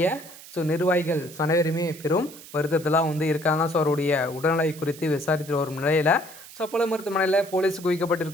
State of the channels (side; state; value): right; noise; hiss, 17 dB below the sound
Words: நிர்வாகிகள் அனைவருமே பெரும் வருத்தத்தெல்லாம் இருக்காங்க. அவருடைய உடல்நிலை குறித்து விசாரித்து வரும் நிலையில் அப்போலோ மருத்துவமனையில் போலீஸ்